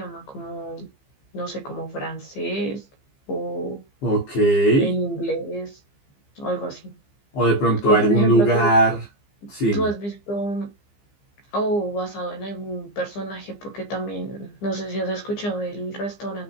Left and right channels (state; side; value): late; right; 15 ms